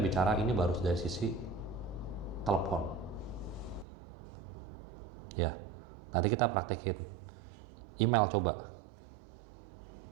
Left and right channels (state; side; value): drops out; left; at 3.9 s